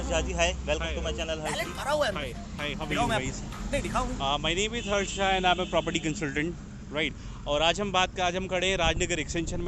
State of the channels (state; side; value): identical; both; correlation 1.00